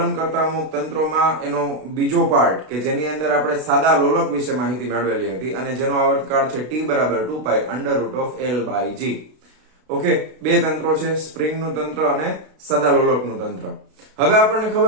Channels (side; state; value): left; late; 32 ms